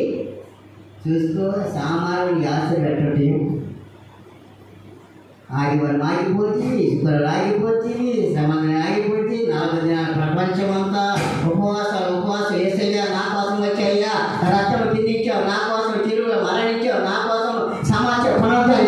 చూసుకో, సామాన్యుడికి ఆశ పెట్టండి. ఆదివారం ఆగిపోతుంది, శుక్రవారం ఆగిపోతుంది, శ్రమణ ఆగిపోతుంది. 4 దినాల ప్రపంచమంతా ఉపవాసం ఏసయ్యా నా కోసం వచ్చాయ్యా, రక్తం తిందించావు, నా కోసం చెరువులో మరణించావు, నా కోసం సమాచారం పునరుద్ధరణ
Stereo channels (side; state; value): both; identical; correlation 1.00